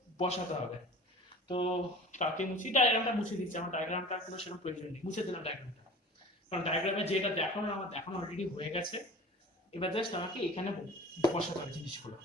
বসাতে হবে। তো কাকে মুছি? ডায়াগ্রামটা মুছে দিচ্ছি, আমার ডায়াগ্রামটা কোনো সেরকম প্রয়োজন নেই, মুছে দিলাম ডায়াগ্রামটা, কারণ ডায়াগ্রামে যেটা দেখানো আমার দেখানো অলরেডি হয়ে গেছে। এবার জাস্ট আমাকে এখানে বসাতে হবে জিনিসগুলো।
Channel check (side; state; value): both; normal; correlation 0.40